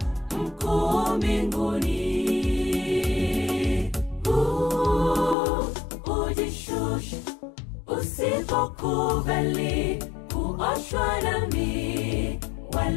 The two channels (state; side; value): drops out; right; at 5.4 s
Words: mkuu mbinguni. Ujishushe usipokubali kuoshwa nami,